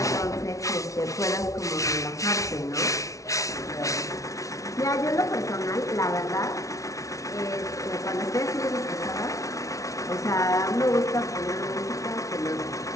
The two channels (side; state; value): right; late; 0.16 ms